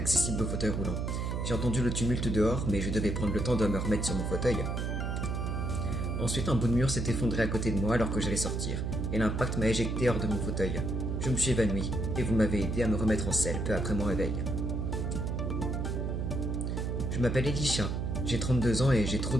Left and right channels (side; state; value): right; noise; hum, 1 dB below the sound